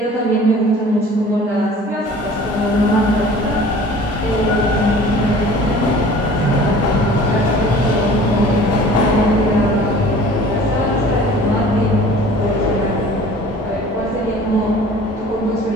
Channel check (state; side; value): normal; both; correlation 0.46